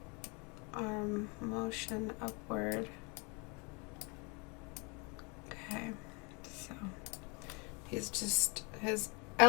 arm motion upward. Okay, so he's just, his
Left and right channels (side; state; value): right; quieter; 31.3 dB